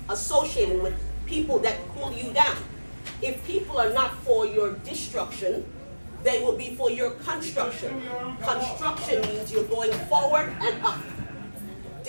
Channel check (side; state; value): both; inverted; correlation -1.00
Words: associated with people that pull you down. If people are not for your destruction, they will be for your construction. Construction means you're going forward and up.